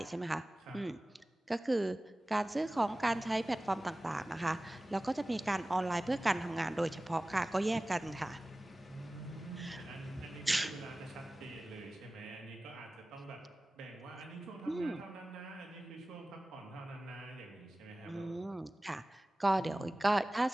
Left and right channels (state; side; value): normal; both; correlation 0.97